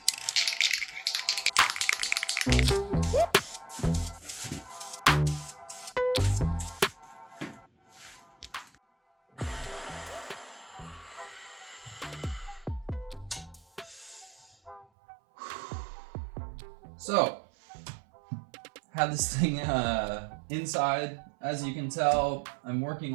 So, had this thing inside. As you can tell, I'm working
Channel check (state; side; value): drops out; left; at 14.9 s